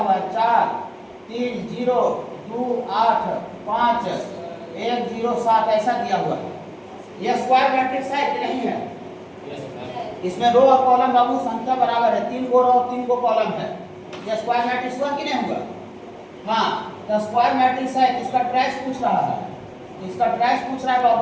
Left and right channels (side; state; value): both; identical; correlation 1.00